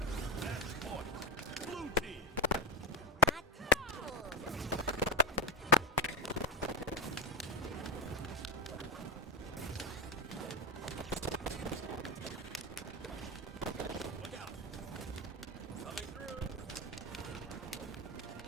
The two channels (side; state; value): both; normal; correlation 0.16